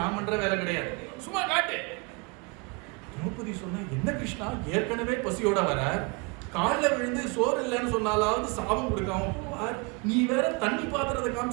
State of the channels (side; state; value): left; quieter; 28.8 dB